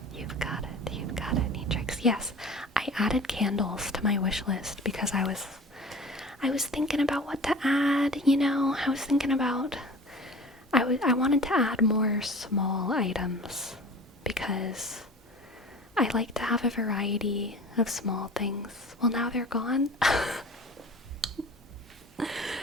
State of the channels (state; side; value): normal; both; correlation 0.41